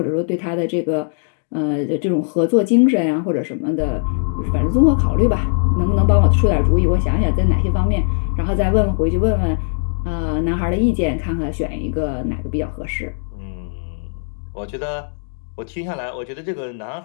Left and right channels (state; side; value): silent; right; digital silence